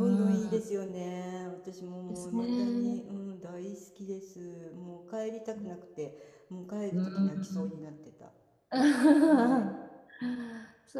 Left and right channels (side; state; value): both; identical; correlation 1.00